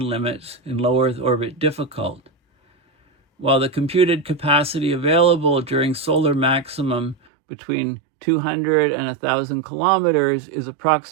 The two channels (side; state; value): left; drops out; at 7.2 s